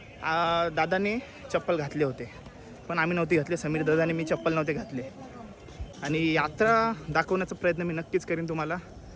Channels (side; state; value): both; identical; correlation 1.00